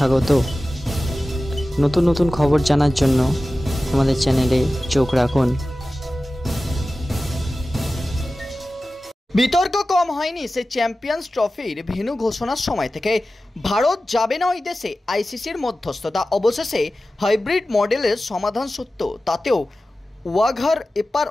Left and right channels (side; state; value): both; normal; correlation 0.95